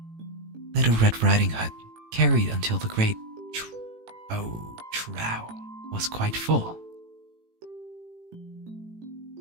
Little Red Riding Hood carried until the great trough was quite full.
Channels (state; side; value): late; left; 18 ms